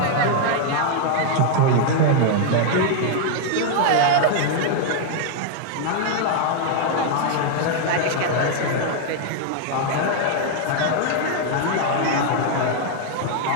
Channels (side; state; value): both; different; correlation 0.00